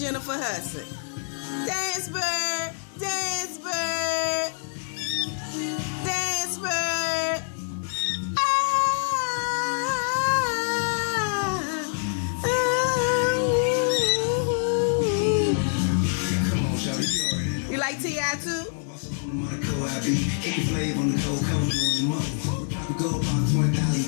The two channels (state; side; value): silent; right; 58 dB below the other